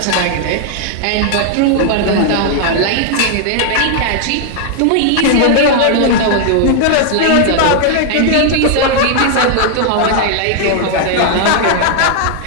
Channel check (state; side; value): different; both; correlation 0.00